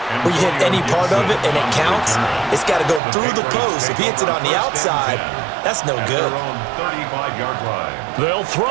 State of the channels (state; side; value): drops out; left; at 3.0 s